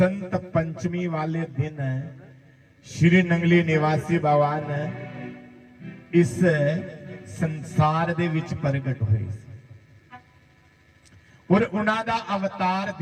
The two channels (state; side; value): identical; both; correlation 1.00